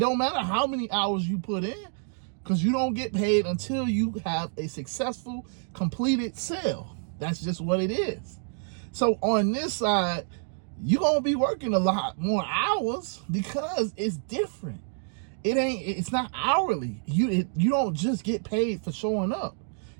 matter how many hours you put in, because you don't get paid until you have a successful, completed sale. That's just what it is. So on this side, you're going to be working a lot more hours because it's different. It's not hourly. You don't just get paid for showing up.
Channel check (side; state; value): left; silent; digital silence